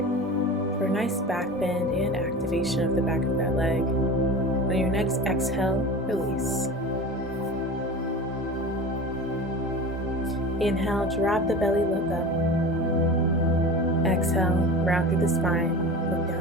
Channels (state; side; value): normal; both; correlation 0.33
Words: for a nice back bend and activation of the back of that leg. On your next exhale, release. Inhale, drop the belly, look up. Exhale, round through the spine, look